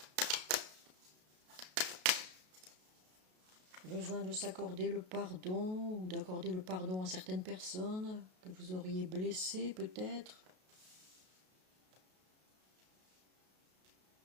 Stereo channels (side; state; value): left; late; 33 ms